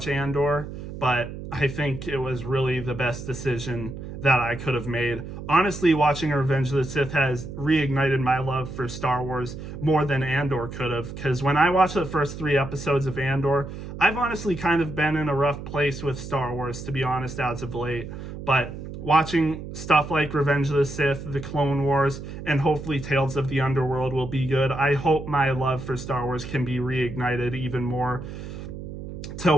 Andor, but I think it was really the best decision that I could have made. Honestly, watching Revenge of the Sith has reignited my love for Star Wars more than Andor could have, because when I watched the first 3 episodes of Andor, I've honestly kind of been in a rough place with Star Wars, to be honest, as of late. But watching stuff like Revenge of the Sith, The Clone Wars, and hopefully Tales of the Underworld will be good. I hope my love for Star Wars can be reignited even more to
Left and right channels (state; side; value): noise; right; hum, 10 dB below the sound